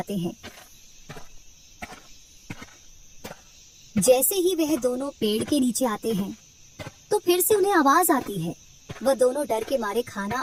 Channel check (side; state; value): both; identical; correlation 1.00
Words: हैं। जैसे ही वह दोनों पेड़ के नीचे आते हैं तो फिर से उन्हें आवाज आती है। वह दोनों डर के मारे